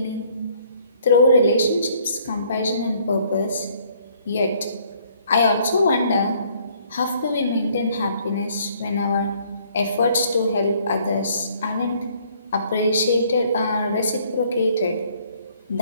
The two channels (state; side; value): inverted; both; correlation -0.62